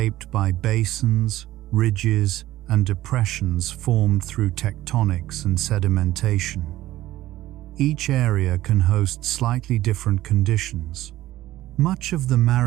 by basins, ridges, and depressions formed through tectonics and sedimentation. Each area can host slightly different conditions. Much of the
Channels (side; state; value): left; quieter; 15.4 dB